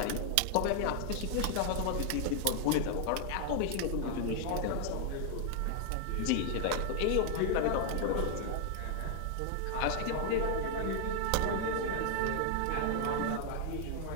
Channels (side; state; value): both; different; correlation 0.00